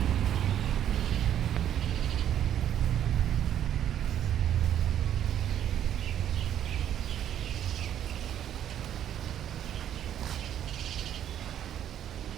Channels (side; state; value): left; quieter; 10.4 dB